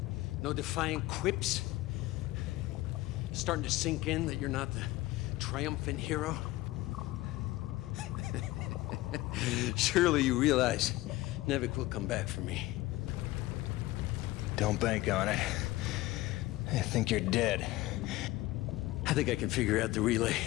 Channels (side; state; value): right; quieter; 18.0 dB